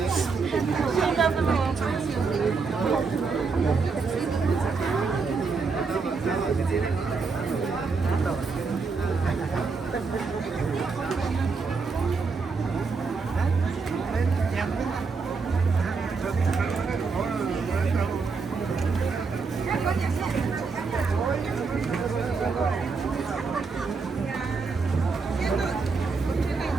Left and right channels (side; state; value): left; quieter; 4.7 dB